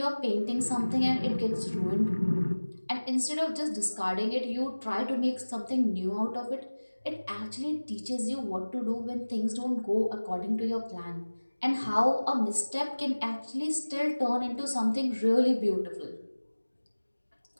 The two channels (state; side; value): inverted; both; correlation -1.00